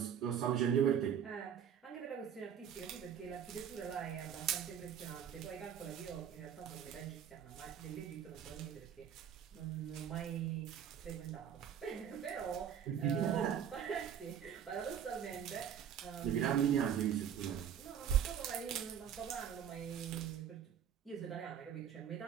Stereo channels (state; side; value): quieter; left; 8.7 dB